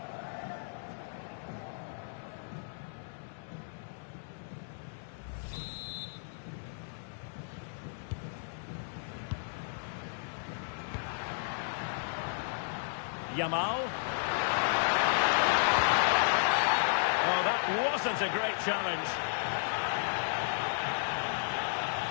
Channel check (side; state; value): right; silent; digital silence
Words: Yamal. Oh, that wasn't a great challenge.